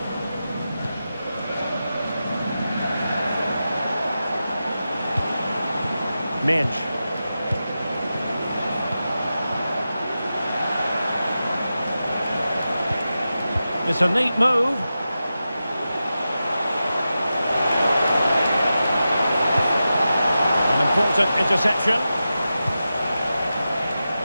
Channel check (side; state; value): both; inverted; correlation -0.92